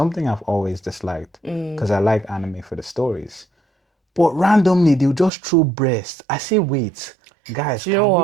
I've always disliked mm. because I like anime for the stories. But randomly they'll just throw breasts. I say, wait, guys, Do you know can we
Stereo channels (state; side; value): drops out; left; at 5.3 s